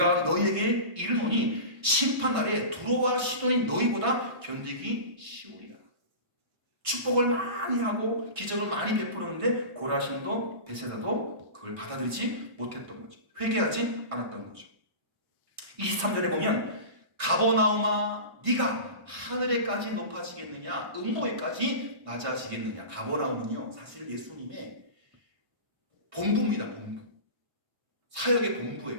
너희에게 이르노니 심판날에 두로와 시돈이 너희보다 견디기 쉬우리라. 축복을 많이 하고 기적을 많이 베푸는데 고라신도 벳세다도 그걸 받아들이지 못했던 거죠. 회개하지 않았던 거죠. 23절에 보면 가버나움아 네가 하늘에까지 높아지겠느냐 음모에까지 낮아지겠느냐. 가버나움은요 사실 예수님의 본부입니다. 본부. 사역의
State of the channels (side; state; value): left; late; 1.6 ms